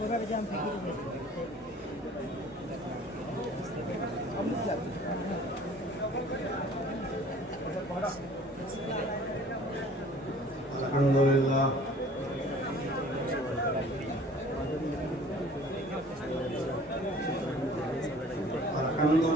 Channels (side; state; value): both; normal; correlation 0.50